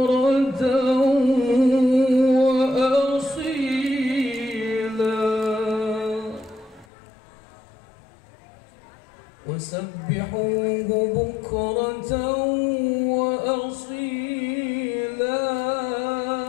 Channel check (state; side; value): drops out; right; at 6.9 s